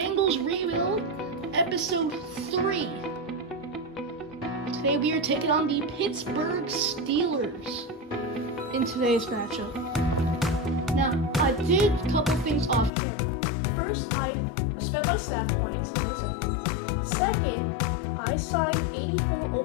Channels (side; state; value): right; drops out; at 12.9 s